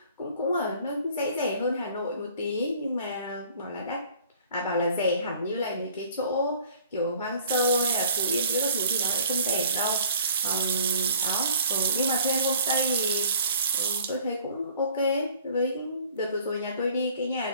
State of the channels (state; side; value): inverted; both; correlation -0.52